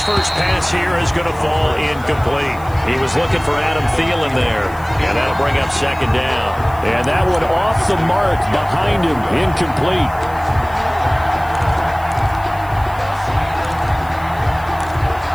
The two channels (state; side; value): noise; left; hiss, 24 dB below the sound